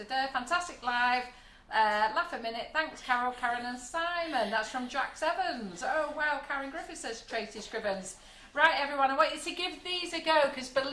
live. Laugh a minute. Thanks, Carol, Karen and Simon. That's from Jax Evans. Oh, wow. Karen Griffith says Tracy Scrivens. Right, everyone, I want you to give these a go because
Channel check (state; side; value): identical; both; correlation 1.00